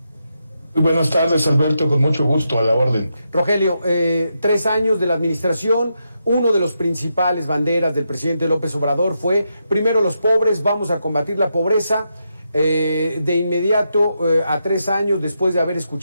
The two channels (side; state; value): both; inverted; correlation -0.84